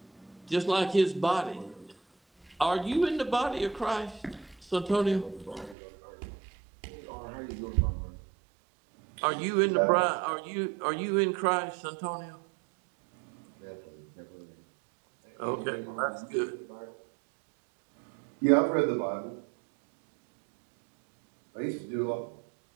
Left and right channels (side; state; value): left; drops out; at 5.8 s